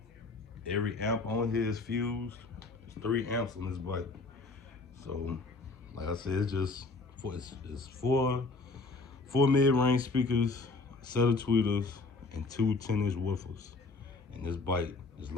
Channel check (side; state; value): right; quieter; 3.7 dB